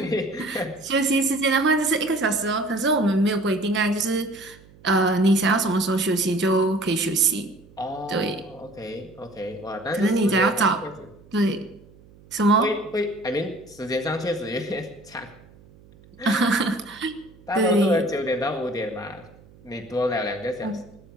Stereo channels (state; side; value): noise; right; hum, 25 dB below the sound